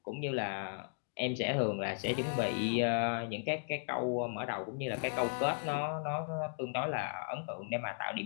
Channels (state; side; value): silent; right; digital silence